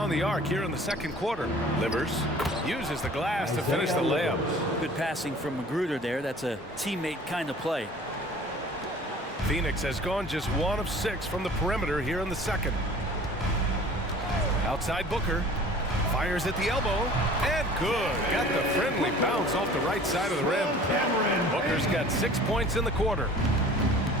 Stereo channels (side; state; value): both; normal; correlation 0.47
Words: the arc here in the second quarter. Livers uses the glass to finish the layup. Good passing from Magruder there. That's a teammate kind of play. Phoenix has gone just 1 of 6 from the perimeter here in the second. Outside Booker. Fires at the elbow. And good. Got the friendly bounce off the right side of the rim. Booker's got 6 points in the quarter.